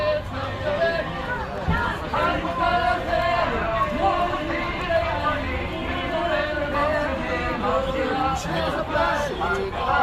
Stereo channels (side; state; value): both; identical; correlation 1.00